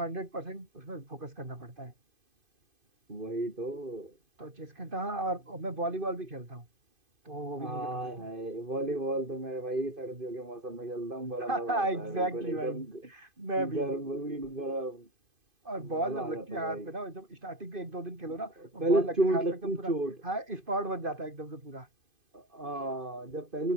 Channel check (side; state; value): left; late; 2.5 ms